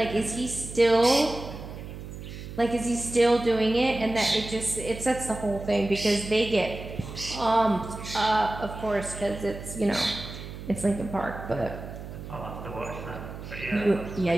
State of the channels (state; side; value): noise; right; hum, 11 dB below the sound